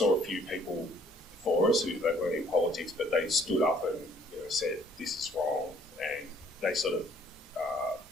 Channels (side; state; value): both; normal; correlation 0.61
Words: a few people before us who they weren't in politics, but they stood up and said this is wrong, and they sort of